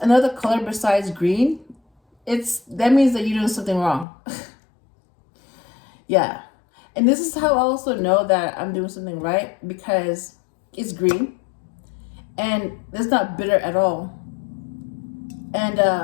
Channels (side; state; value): right; drops out; at 4.0 s